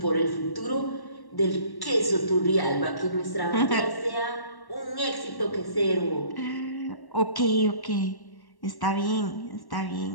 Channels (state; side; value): late; right; 1.1 ms